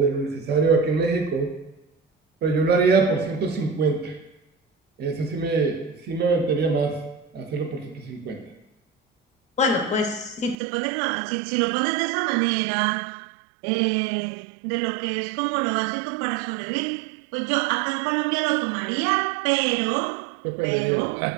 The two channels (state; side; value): drops out; left; at 10.6 s